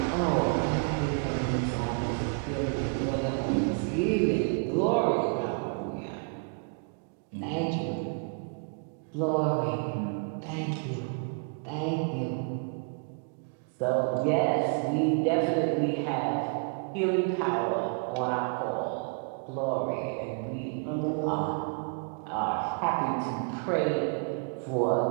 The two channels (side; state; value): left; quieter; 39.5 dB